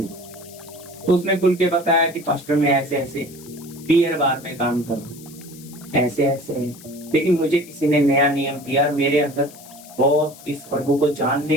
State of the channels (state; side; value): noise; left; hiss, 20 dB below the sound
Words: तो उसने खुल के बताया कि पास्टर मैं ऐसे ऐसे बियर बार में काम करूं, ऐसे ऐसे है, लेकिन मुझे किसी ने नया नियम दिया, मेरे अंदर बहुत इस प्रभु को जानने